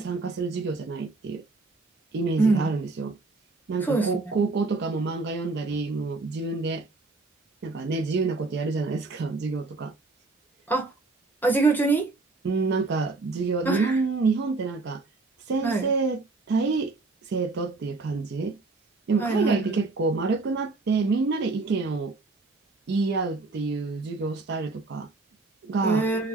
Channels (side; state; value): left; quieter; 3.5 dB